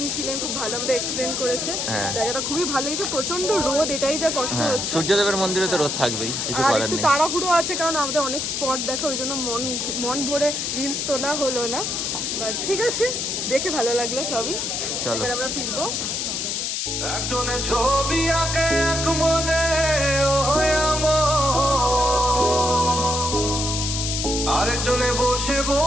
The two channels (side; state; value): left; noise; hiss, 1 dB below the sound